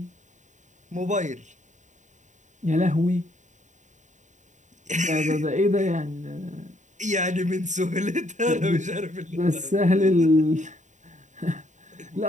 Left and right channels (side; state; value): left; late; 0.35 ms